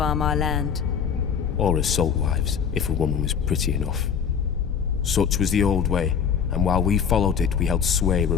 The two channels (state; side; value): quieter; right; 7.2 dB